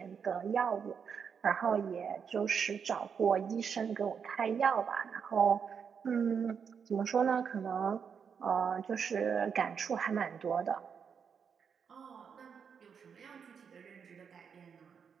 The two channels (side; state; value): left; quieter; 6.8 dB